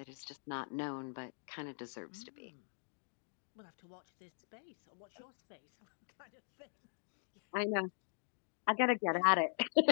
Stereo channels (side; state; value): right; silent; digital silence